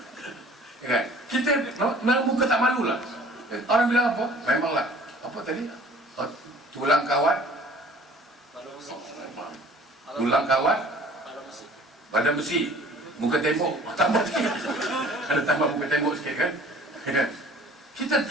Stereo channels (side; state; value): both; normal; correlation 0.51